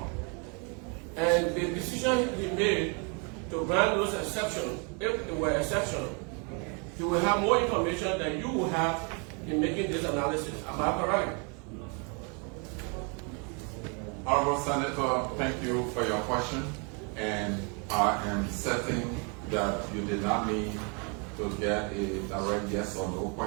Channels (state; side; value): quieter; left; 35.1 dB